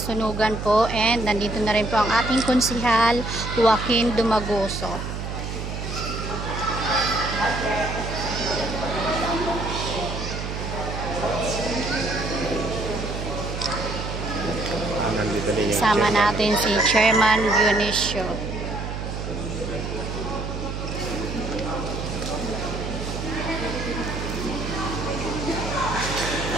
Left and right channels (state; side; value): noise; right; hum, 5 dB below the sound